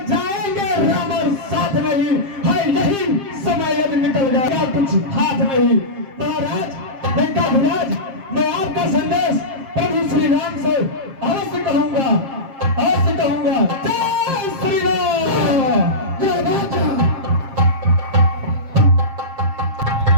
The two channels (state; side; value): late; left; 7.5 ms